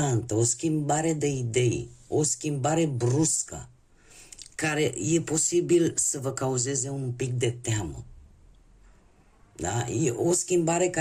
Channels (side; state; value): both; identical; correlation 1.00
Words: o schimbare de idei, o schimbare bruscă, care e posibil să vă cauzeze un pic de teamă. Da? E o schimbare